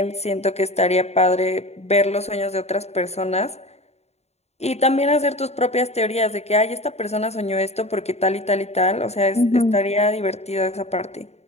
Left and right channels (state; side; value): late; right; 0.31 ms